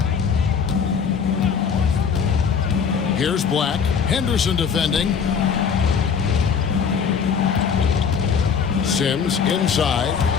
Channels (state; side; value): quieter; right; 6.4 dB